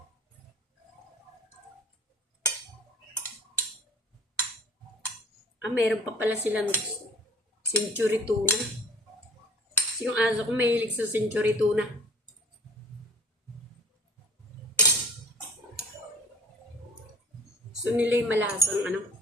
Meron pa pala silang century tuna. Kasi yung aso ko mahilig sa century tuna. So nila yung malasang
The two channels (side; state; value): both; normal; correlation 0.48